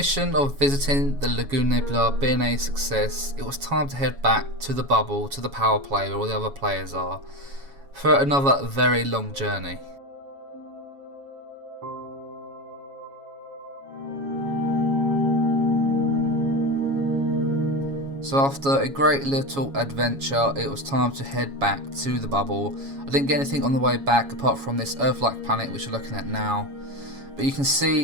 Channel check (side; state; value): left; late; 7.2 ms